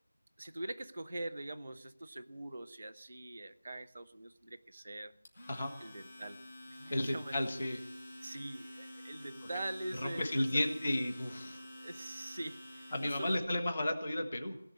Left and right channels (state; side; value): inverted; both; correlation -0.95